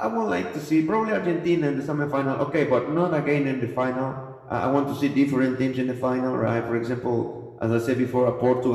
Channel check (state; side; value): identical; both; correlation 1.00